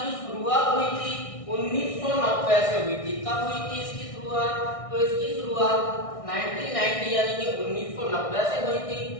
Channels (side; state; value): right; late; 1.6 ms